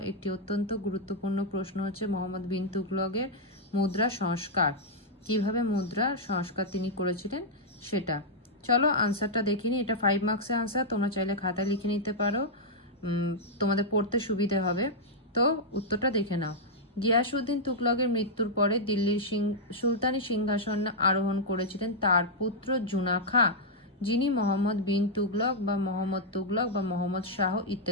একটি অত্যন্ত গুরুত্বপূর্ণ প্রশ্ন হচ্ছে মোহাম্মদ বিন তুগলকের মুদ্রা সংস্কার। কিভাবে মুদ্রা সংস্কার তিনি করেছিলেন সেটা। চলো আনসারটা দেখিনি। এটা 5 মার্কসের আনসার, তোমরা চাইলে খাতায় লিখে নিতে পারো, তোমাদের পড়তে সুবিধে হবে। তো উত্তরটা দেখে নাও। গিয়াসউদ্দিন তুগলকের মৃত্যুর পরে দিল্লির সুলতানি সিংহাসন আরোহণ করেছিলেন তার পুত্র জুনা খাঁ, যিনি মোহাম্মদ বিন তুগলক বা মোহাম্মদ তুগলক বা মোহাম্মদ শাহ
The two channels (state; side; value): normal; both; correlation -0.06